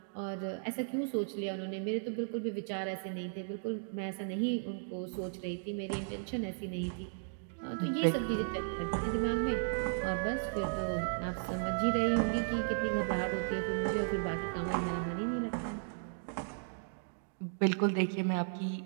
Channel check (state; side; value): silent; left; digital silence